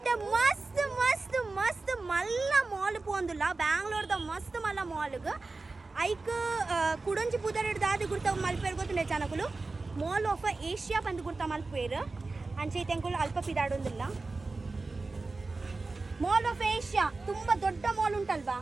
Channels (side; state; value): left; quieter; 3.6 dB